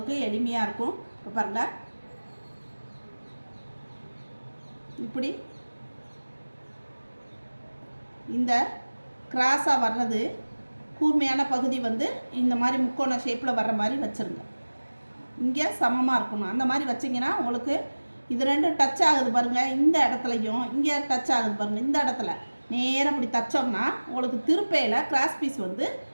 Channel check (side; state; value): both; inverted; correlation -1.00